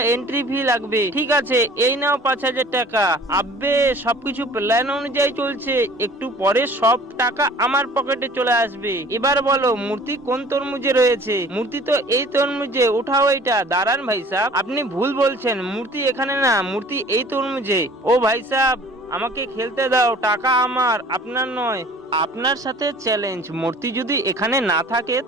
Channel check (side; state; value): both; normal; correlation 0.49